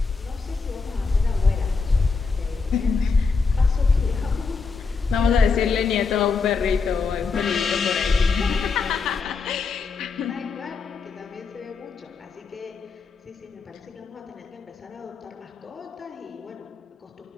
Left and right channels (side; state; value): right; quieter; 4.8 dB